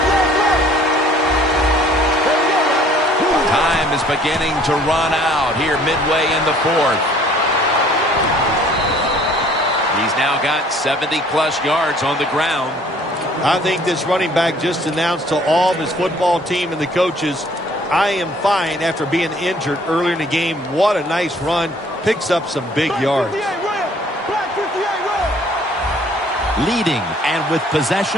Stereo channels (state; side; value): normal; both; correlation 0.57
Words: Is beginning to run out here midway in the fourth. He's now got 70-plus yards on the ground. I think this running back just announced to all of his football team and the coaches, I am fine after being injured earlier in the game. What a nice run. Picks up some big yards. Leading and with